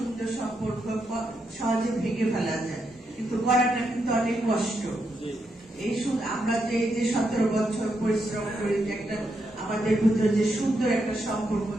সম্পর্ক সহজে ভেঙে ফেলা যায়, কিন্তু করাটা কিন্তু অনেক কষ্ট। এই আমরা যে 17 বছর পরিশ্রম করে যে একটা আমাদের ভিতরে যে সুন্দর একটা সম্পর্ক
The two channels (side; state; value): both; normal; correlation 0.81